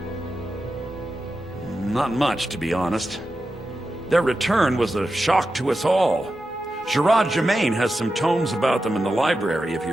Not much, to be honest. Their return was a shock to us all. Gerard Germain has some tomes about them in the library, if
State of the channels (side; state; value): both; normal; correlation 0.91